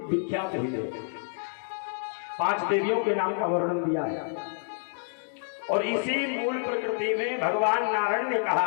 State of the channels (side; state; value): right; silent; digital silence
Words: विख्यात हुई है। 5 देवियों के नाम का वर्णन दिया है। और इसी मूल प्रकृति में भगवान नारायण ने